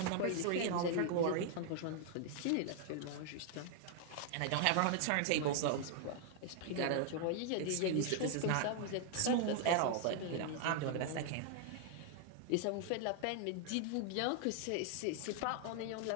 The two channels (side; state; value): both; different; correlation 0.00